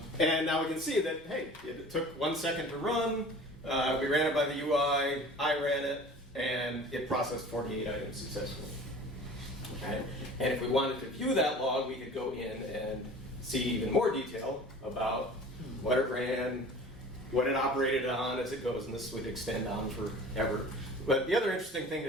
And now we can see that, hey, it took 1 second to run. We ran it by the UI. I ran it, and it processed 48 items successfully. Okay? And if we wanted to view that log, we could go in and see even more detail about what it ran, what it operated on as it goes, and this would extend on forever. But the other interesting thing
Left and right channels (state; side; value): normal; both; correlation 0.43